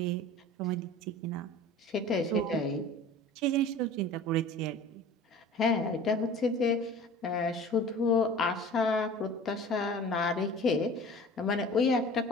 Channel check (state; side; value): normal; both; correlation 0.41